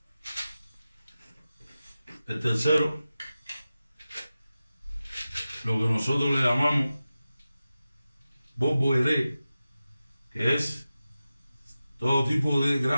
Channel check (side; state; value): both; inverted; correlation -0.94